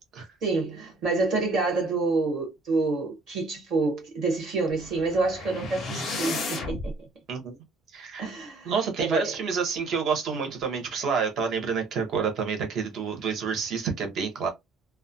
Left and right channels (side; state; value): left; quieter; 3.6 dB